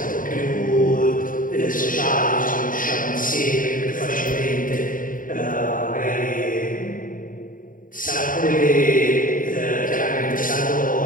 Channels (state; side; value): late; right; 0.39 ms